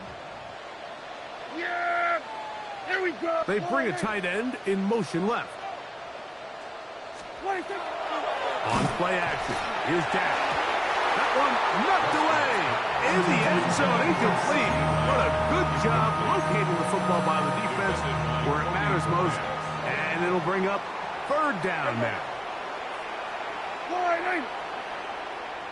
Yeah, here we go. They bring a tight end in motion left. On play action, here's Dak. That one knocked away in the end zone, incomplete. What a good job locating the football by the defense where it matters most. And it'll bring up third down now.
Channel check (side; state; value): both; identical; correlation 1.00